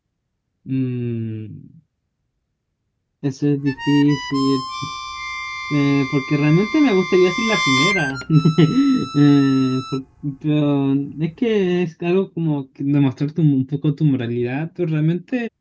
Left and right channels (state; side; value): identical; both; correlation 1.00